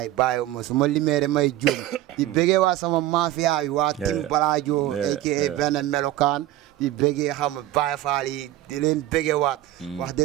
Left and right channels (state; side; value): quieter; left; 14.6 dB